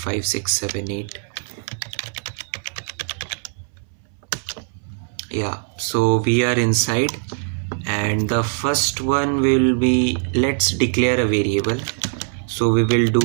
6 7 8. Yeah, so we are inside, and the first one will be, let's declare a variable. So we will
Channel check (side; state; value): left; silent; 62 dB below the other